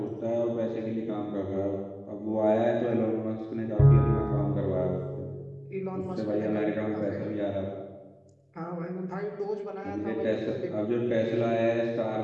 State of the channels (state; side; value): identical; both; correlation 1.00